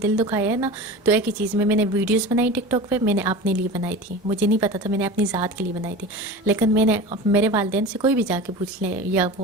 دکھایا ہے نا, تو ایک ہی چیز میں نے ویڈیوز بنائی ٹک ٹاک پہ, میں نے اپنے لیے بنائی تھی, مجھے نہیں پتا تھا, میں نے اپنی ذات کے لیے بنائی تھی. لیکن میں نے میرے والدین سے کوئی بھی جا کے پوچھ لے, یا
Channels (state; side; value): normal; both; correlation 0.33